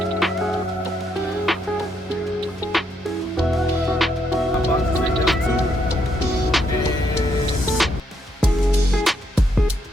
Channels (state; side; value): normal; both; correlation 0.76